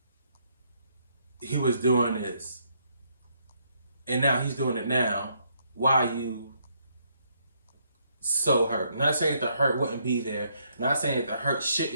he was doing this and now he's doing it now, why are you so hurt? I'm not saying that the hurt wouldn't be there, I'm not saying that the hurt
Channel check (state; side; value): inverted; both; correlation -0.72